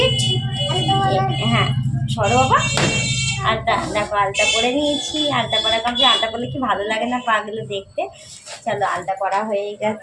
হ্যাঁ সরো বাবা। আলতা দেখো আলতা পরে নিয়েছি, আলতা পরা কমপ্লিট। আলতা পরলে কি ভালো লাগে না পাগুলো দেখতে। চলো আলতা পরা হয়ে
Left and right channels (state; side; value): identical; both; correlation 1.00